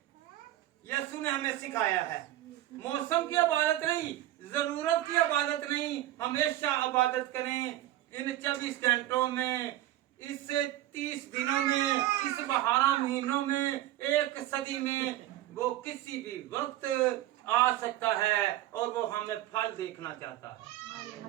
यीशु ने हमें सिखाया है। मौसम की इबादत नहीं, जरूरत की इबादत नहीं, हमेशा इबादत करें। इन 24 घंटों में, इस 30 दिनों में, इस 12 महीनों में, 1 सदी में, वो किसी भी वक्त आ सकता है और वो हमें फल देखना चाहता है।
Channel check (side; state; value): left; quieter; 14.5 dB